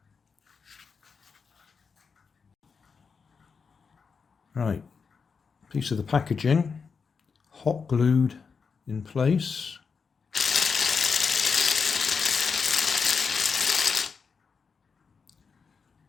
Right, piece of the packaging, hot glued in place.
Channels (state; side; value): quieter; right; 5.5 dB